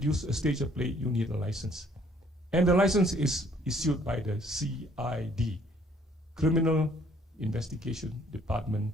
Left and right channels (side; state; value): both; normal; correlation 0.62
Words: a stage play, you need a license. And the license is issued by the CID, Criminal Investigation Department